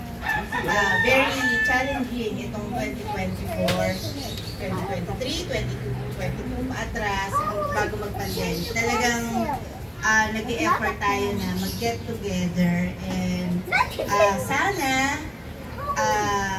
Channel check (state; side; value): identical; both; correlation 1.00